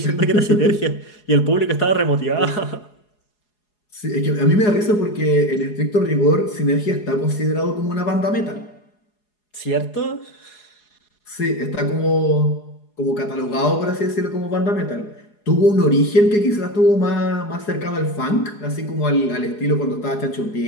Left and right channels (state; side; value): late; right; 4.8 ms